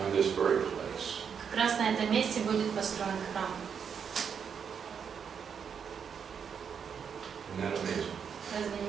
this very place. Как раз на этом месте будет построен храм. Isn't that amazing? Разве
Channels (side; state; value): left; quieter; 7.1 dB